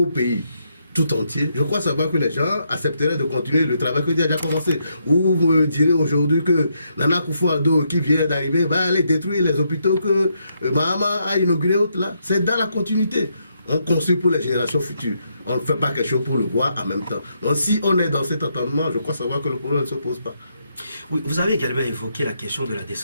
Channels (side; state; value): both; inverted; correlation -0.78